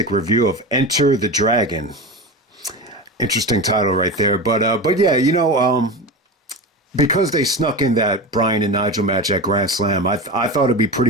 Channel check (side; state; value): both; normal; correlation 0.25